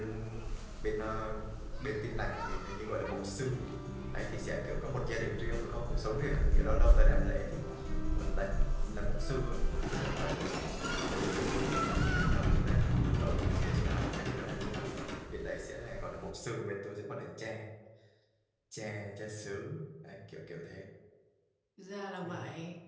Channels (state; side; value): identical; both; correlation 1.00